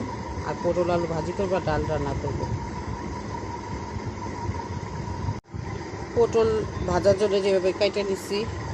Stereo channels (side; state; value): both; identical; correlation 1.00